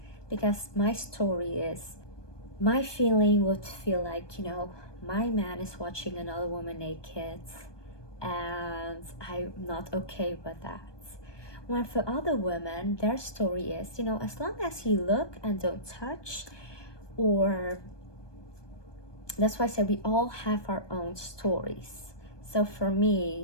because my story is, my feeling would feel like, my man is watching another woman naked, and I'm not okay with that. When for other women, their story is, as long as you look and don't touch, Or that's why I said we all have our own stories. So for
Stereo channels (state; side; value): late; right; 1.2 ms